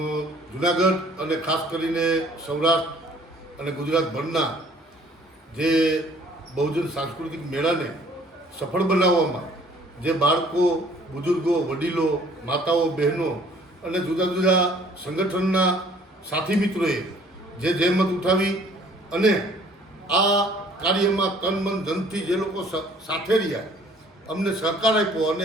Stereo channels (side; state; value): both; normal; correlation 0.57